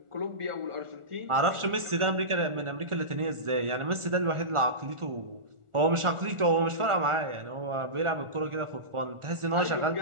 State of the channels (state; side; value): late; left; 1.4 ms